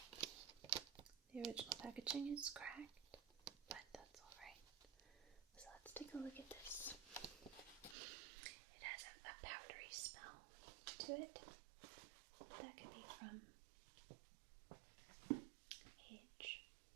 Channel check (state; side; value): drops out; left; at 8.0 s